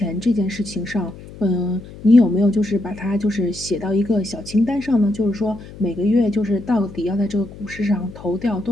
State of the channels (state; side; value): noise; left; hum, 16 dB below the sound